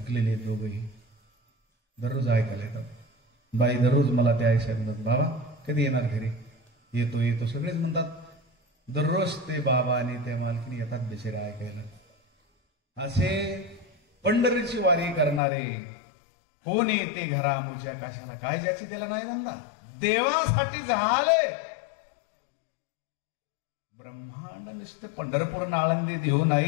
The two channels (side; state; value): right; drops out; at 15.4 s